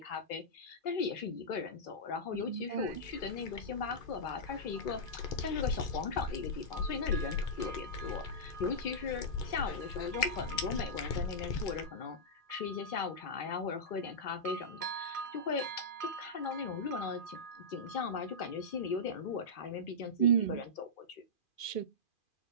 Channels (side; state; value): right; late; 2.4 ms